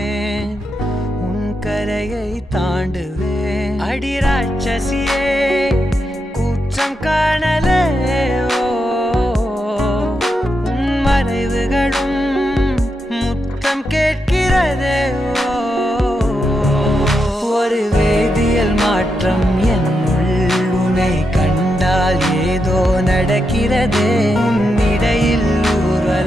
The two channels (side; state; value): both; normal; correlation 0.85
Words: உன் கரையை தாண்டுவேன் அடி ராட்சசியே கூச்சம் காணலே உன் மறைவுகளும் முத்தம் கேட்கிறதே ஒரு வேதியியல் மாற்றம் என்னுள் உன்னை கண்டால் ஏதோ நடக்கிறதே உன்னிடையில்